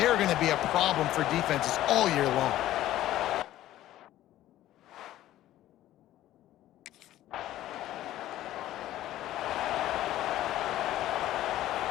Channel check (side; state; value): right; quieter; 14.0 dB